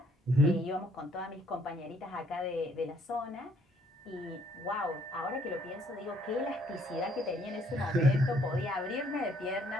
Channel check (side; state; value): both; normal; correlation 0.65